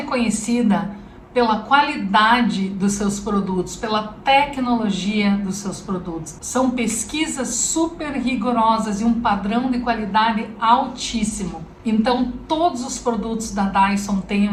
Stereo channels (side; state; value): both; identical; correlation 1.00